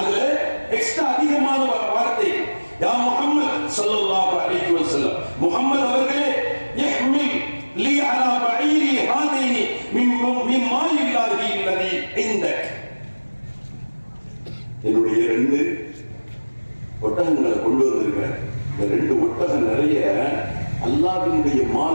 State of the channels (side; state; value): both; inverted; correlation -1.00